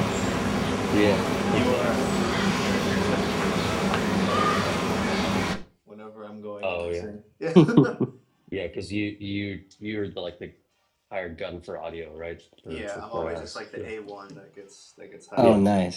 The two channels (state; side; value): identical; both; correlation 1.00